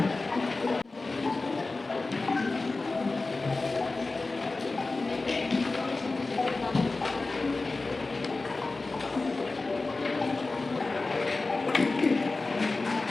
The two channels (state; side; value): quieter; right; 3.5 dB